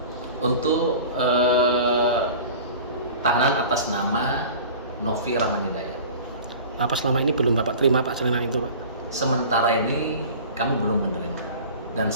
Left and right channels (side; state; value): both; inverted; correlation -0.40